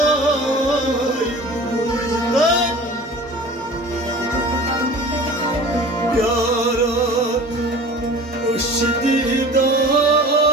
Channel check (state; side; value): normal; both; correlation 0.41